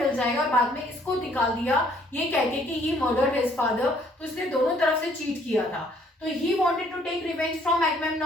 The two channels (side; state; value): both; normal; correlation 0.63